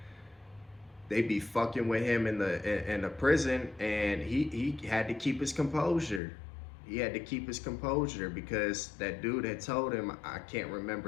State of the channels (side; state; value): right; drops out; at 6.2 s